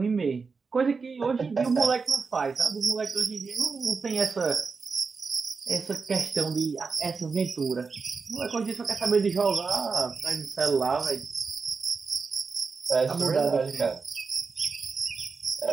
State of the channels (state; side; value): quieter; left; 4.8 dB